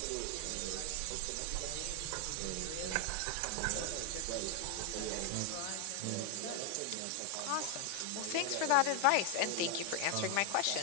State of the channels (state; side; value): different; both; correlation 0.01